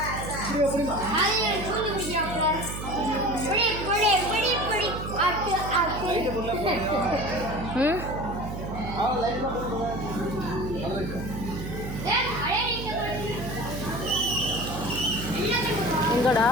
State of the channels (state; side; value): noise; right; hum, 7 dB below the sound